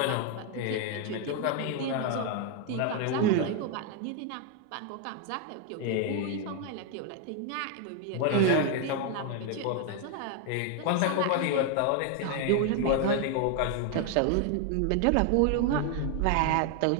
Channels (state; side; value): different; both; correlation 0.01